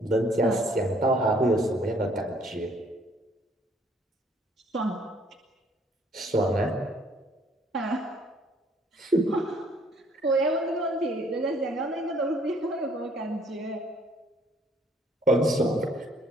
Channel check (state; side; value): normal; both; correlation 0.62